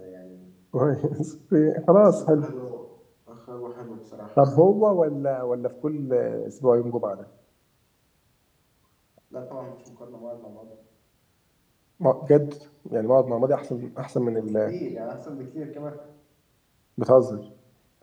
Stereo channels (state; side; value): identical; both; correlation 1.00